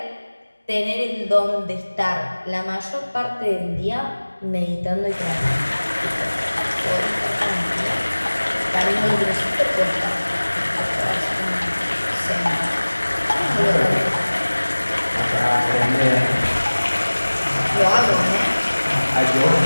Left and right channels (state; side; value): inverted; both; correlation -1.00